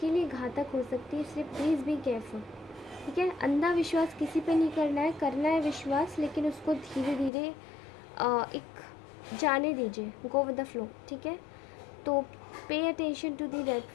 लिए घातक हो सकती है, इसलिए प्लीज़ बी केयरफुल, ठीक है। अंधा विश्वास किसी पे नहीं करना है, करना है विश्वास, लेकिन उसको धीरे धीरे एक जाने दीजिए, गो विद द फ्लो, ठीक है। तो pay attention to the red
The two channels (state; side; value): drops out; right; at 7.3 s